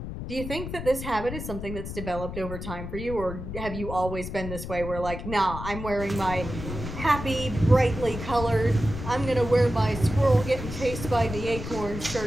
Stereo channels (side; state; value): left; noise; rumble, 8 dB below the sound